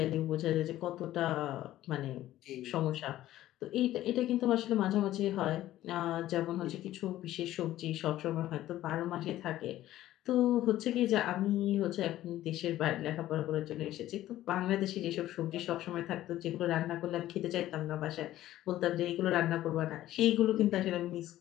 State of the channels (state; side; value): quieter; right; 14.1 dB